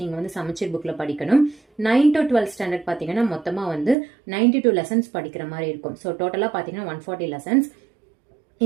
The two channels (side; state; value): left; drops out; at 4.0 s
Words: நீங்கள் வந்து சமச்சீர் புக்கில் படிக்கணும். 9 to 12 ஸ்டாண்டர்ட் பார்த்தீங்கன்னா மொத்தமாக வந்து 92 லெசன்ஸ் படிக்கிற மாதிரி இருக்கும். ஸோ டோட்டலாக பார்த்தீங்கன்னா 140 லெசன்ஸ்.